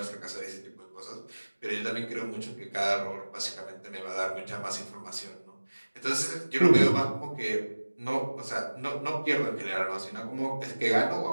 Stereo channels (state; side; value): inverted; both; correlation -1.00